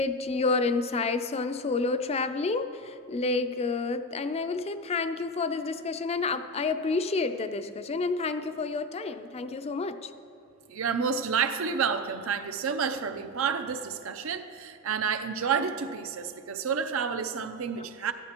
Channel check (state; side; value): normal; both; correlation 0.17